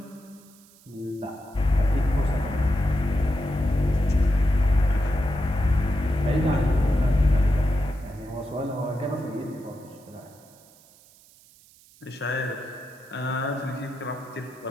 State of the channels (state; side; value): noise; right; hiss, 27 dB below the sound